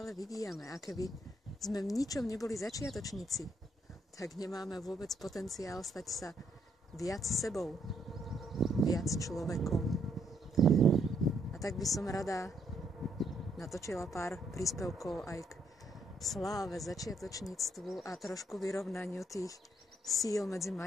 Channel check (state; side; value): normal; both; correlation 0.73